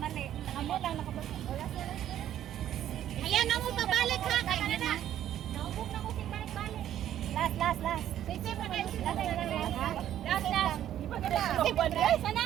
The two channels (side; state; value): left; quieter; 11.4 dB